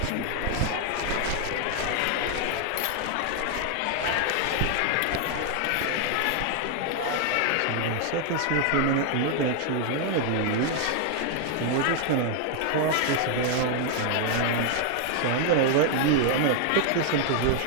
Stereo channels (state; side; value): different; both; correlation 0.00